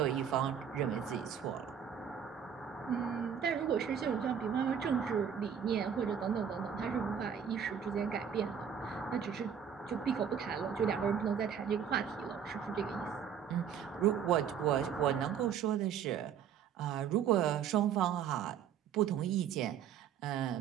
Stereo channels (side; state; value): left; quieter; 8.1 dB